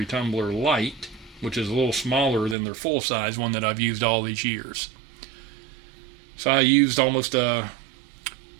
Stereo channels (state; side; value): drops out; left; at 2.6 s